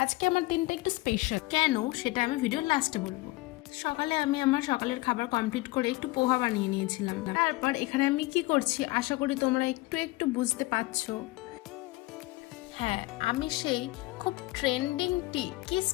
আজকে আমার দিনটা একটু স্পেশাল। কেন সেটা আমি ভিডিওর লাস্টে বলবো। সকালে আমি আমার সকালের খাবার কমপ্লিট করে একটু পোহা বানিয়ে নিয়েছিলাম। তারপর এখানে আমি কি করছি আশা করি তোমরা একটু একটু বুঝতে পারছো। হ্যাঁ, আমি সেই খুব ট্রেন্ডিং কিস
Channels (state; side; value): quieter; right; 20.8 dB